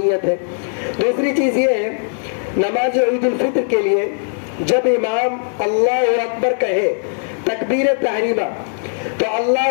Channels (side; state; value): right; silent; digital silence